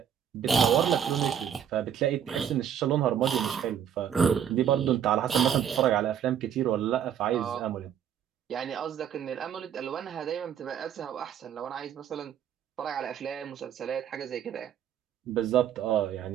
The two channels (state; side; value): quieter; left; 8.9 dB